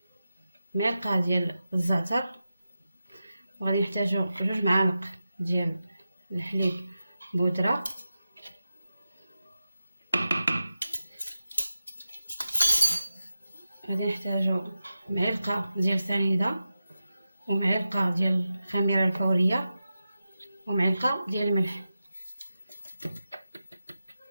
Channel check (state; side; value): inverted; both; correlation -0.92